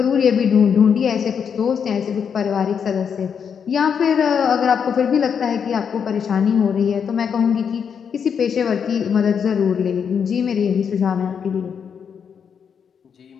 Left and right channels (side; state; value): right; quieter; 7.1 dB